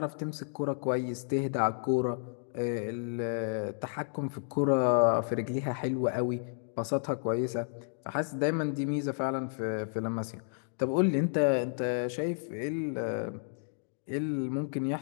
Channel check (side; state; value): right; silent; digital silence